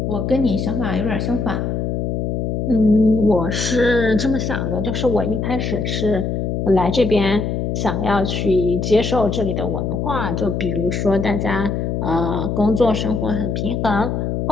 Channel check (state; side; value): noise; left; hum, 1 dB below the sound